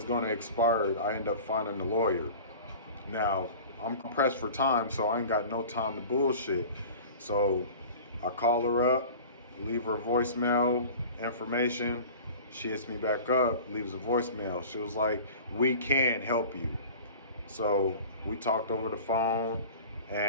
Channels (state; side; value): inverted; both; correlation -0.40